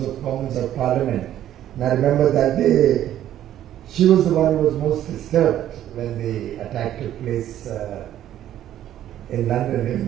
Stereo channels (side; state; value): left; quieter; 11.9 dB